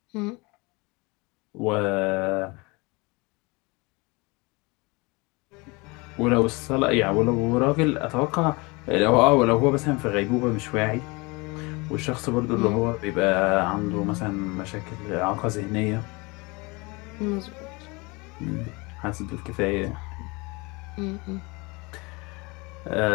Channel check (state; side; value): quieter; right; 26.4 dB